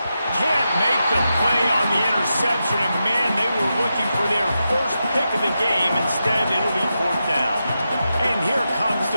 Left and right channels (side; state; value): both; inverted; correlation -0.88